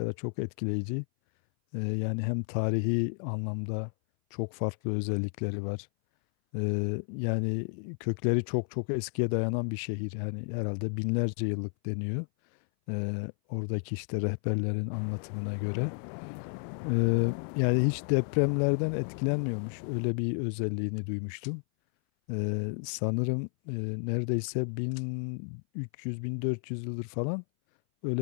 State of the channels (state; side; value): silent; right; 57 dB below the other